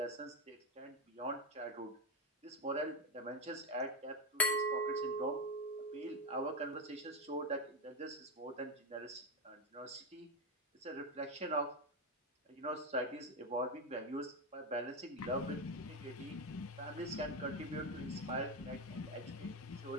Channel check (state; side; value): normal; both; correlation 0.10